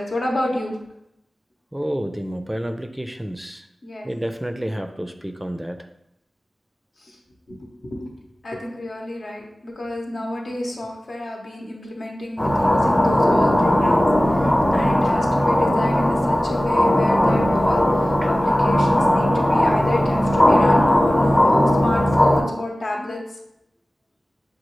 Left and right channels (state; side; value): normal; both; correlation 0.97